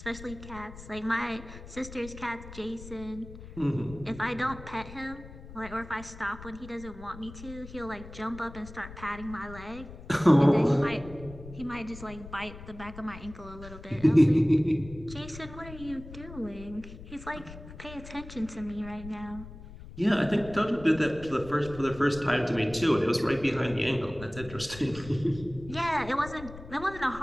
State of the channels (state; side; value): noise; left; rumble, 15 dB below the sound